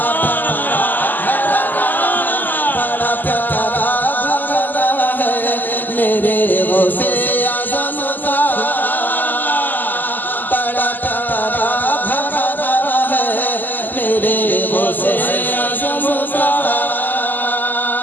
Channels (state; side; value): late; right; 0.086 ms